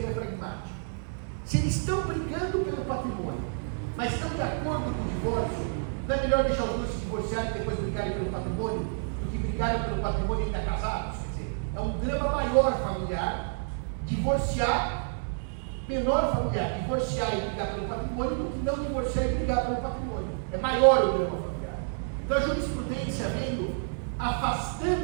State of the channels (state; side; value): silent; left; 58 dB below the other